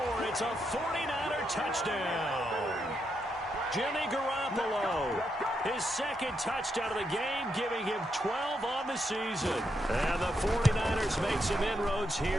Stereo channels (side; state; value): both; normal; correlation 0.81